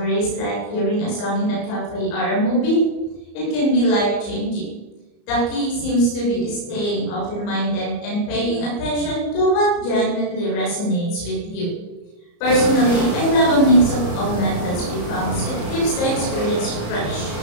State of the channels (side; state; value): right; late; 34 ms